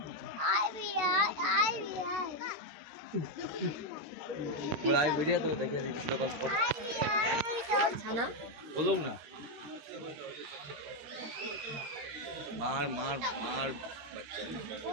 তো দেখে দিচ্ছি বলুন না, মার মার মার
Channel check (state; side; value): late; left; 13 ms